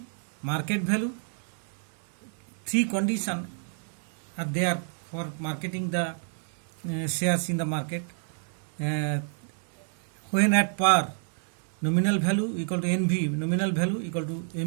market value. Three conditions are there for marketing the shares in the market. When at par, nominal value equal to NV, nominal value equal to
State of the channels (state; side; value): silent; left; 59 dB below the other